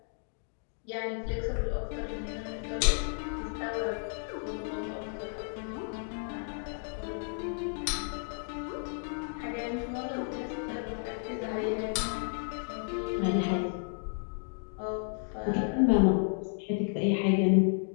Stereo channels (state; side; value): silent; right; 56 dB below the other